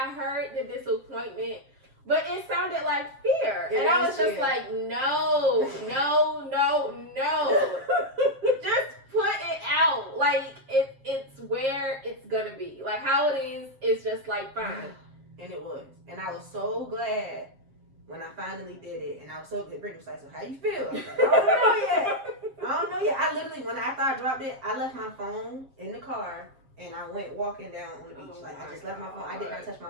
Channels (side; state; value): left; late; 7.5 ms